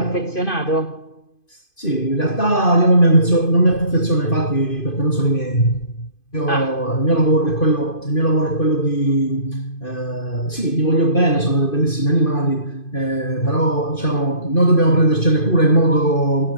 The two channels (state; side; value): late; right; 2.5 ms